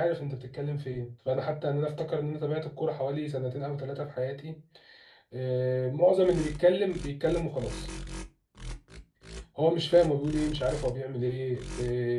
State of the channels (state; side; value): identical; both; correlation 1.00